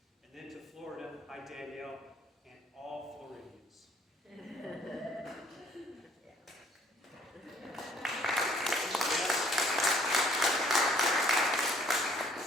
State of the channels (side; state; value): both; normal; correlation 0.59